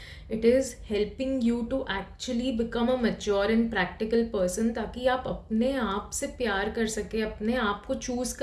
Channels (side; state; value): both; identical; correlation 1.00